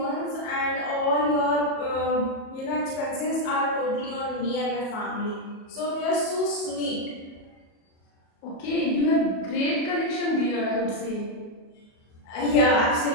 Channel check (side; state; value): right; late; 37 ms